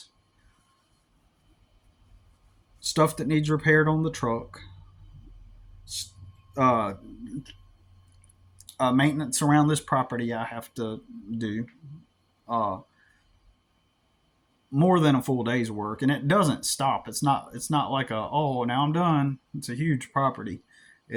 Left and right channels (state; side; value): identical; both; correlation 1.00